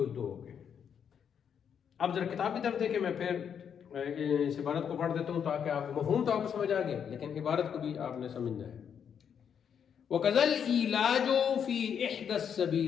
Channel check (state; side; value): quieter; right; 7.8 dB